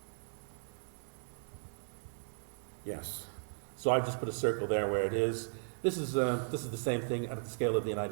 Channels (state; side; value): silent; left; 53 dB below the other